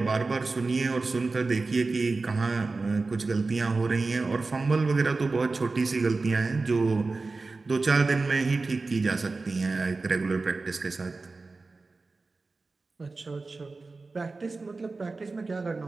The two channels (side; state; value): left; quieter; 3.8 dB